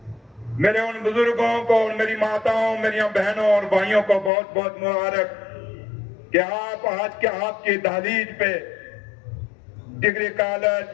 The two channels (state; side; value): drops out; right; at 4.3 s